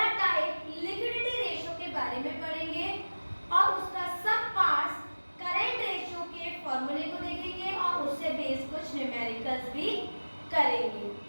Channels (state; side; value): inverted; both; correlation -1.00